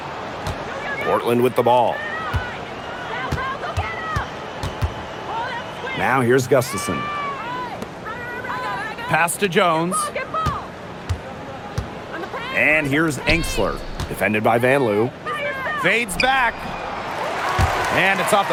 Portland with the ball. Now here's Gustafson. Pass to Jones. And here's Engsler. Defended by Van Loo. Fades back. And it's off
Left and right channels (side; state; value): both; identical; correlation 1.00